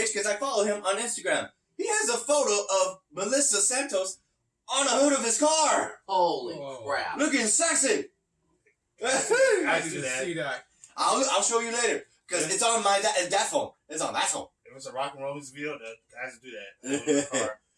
because I follow him on Instagram. He has a photo of Melissa Santos on the hood of his car. Holy Whoa. crap. Looking sexy. I do didn't that. see that. I'll show you later because it's on that phone. It's on that phone. If it's a rock and roll music video, the guys do that.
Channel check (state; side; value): identical; both; correlation 1.00